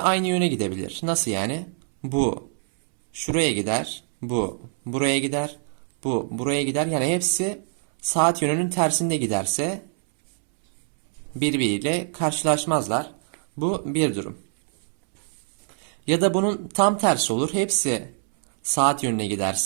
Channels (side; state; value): left; silent; 62 dB below the other